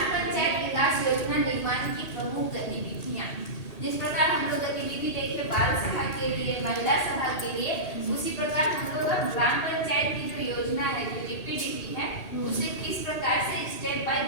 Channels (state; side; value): late; right; 1.8 ms